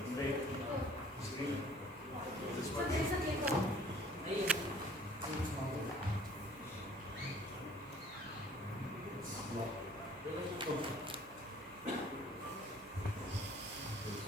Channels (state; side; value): normal; both; correlation 0.54